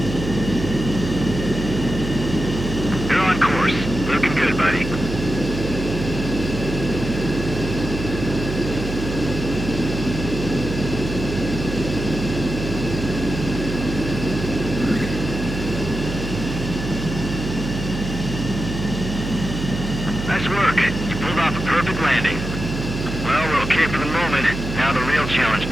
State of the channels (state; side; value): noise; right; hum, 6 dB below the sound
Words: You're on course. Looking good, buddy. Nice work. You pulled off a perfect landing. Well, we're okay for the moment. Now the real challenge